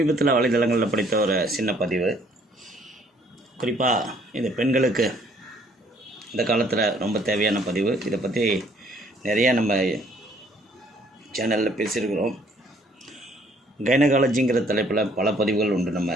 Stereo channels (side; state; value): both; normal; correlation 0.62